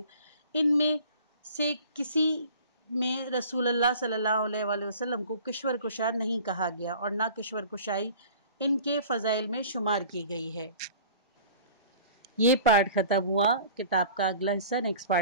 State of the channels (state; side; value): inverted; both; correlation -0.46